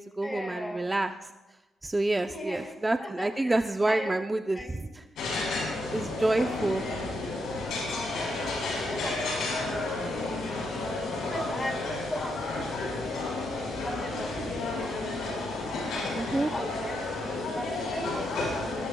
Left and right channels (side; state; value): both; normal; correlation 0.83